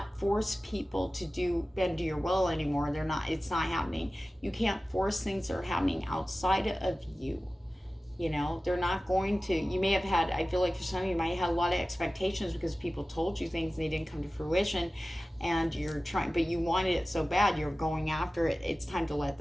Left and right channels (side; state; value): both; normal; correlation 0.96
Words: force people to bend to your will anymore. It's not happening. You can't force things that are happening outside of you. They're not going to. You may have had, I feel like for some of you might have had a lot of expectations because people told you things and they didn't come to fruition, and you're trying, but you wanted it so bad, you're going after it. It's time to let